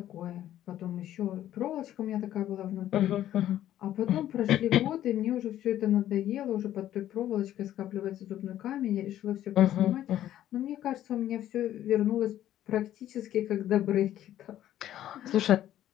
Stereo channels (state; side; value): quieter; right; 12.4 dB